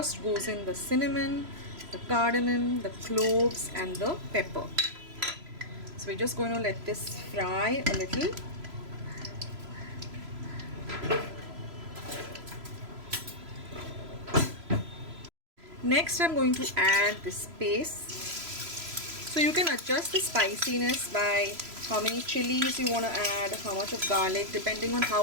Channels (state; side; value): late; left; 3.0 ms